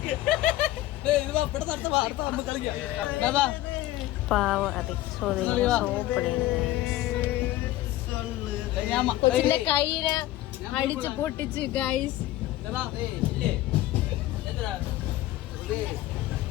പാവ അതെ സോപ്പടിയാണ് കൈയിനെ അടിച്ച് പൊട്ടിച്ച് ഗൈസ്.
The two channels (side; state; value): right; quieter; 15.7 dB